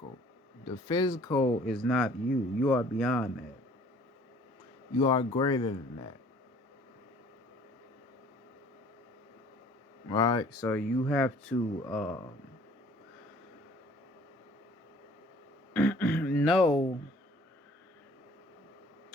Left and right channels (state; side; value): normal; both; correlation 0.54